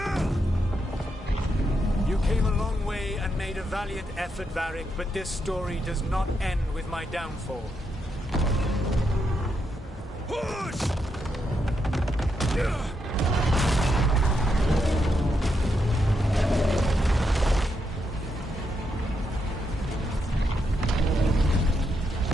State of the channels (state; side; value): normal; both; correlation 0.81